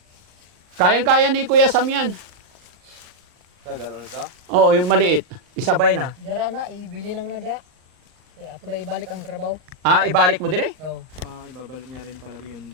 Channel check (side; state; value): left; late; 39 ms